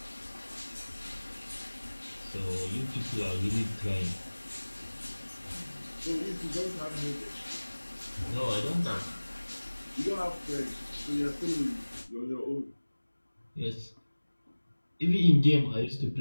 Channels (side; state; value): both; inverted; correlation -1.00